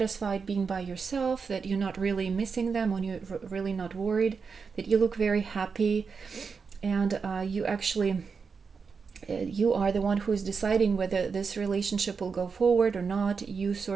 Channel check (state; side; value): quieter; left; 5.4 dB